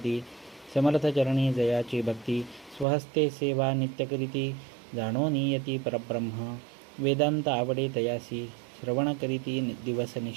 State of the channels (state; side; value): drops out; left; at 2.9 s